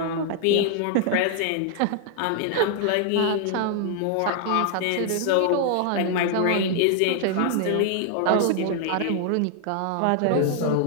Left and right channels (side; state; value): both; different; correlation 0.00